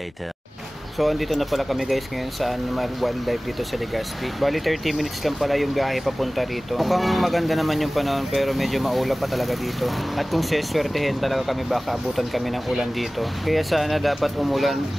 So andito na pala kami guys ngayon sa Animal Wildlife dito sa Legazpi. Bali 30 minutes lang pala yung biyahe papunta rito. Mukhang maganda naman yung panahon pero medyo maulap pa talaga dito. At kung seswertehin talaga kami baka abutan kami ng ulan dito. Kaya sana dapat umulan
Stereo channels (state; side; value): normal; both; correlation 0.98